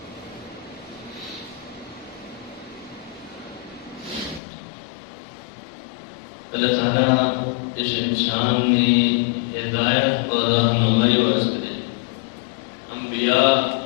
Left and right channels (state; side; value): drops out; right; at 4.4 s